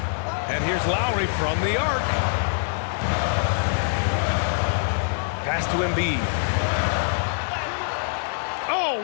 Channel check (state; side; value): silent; right; 62 dB below the other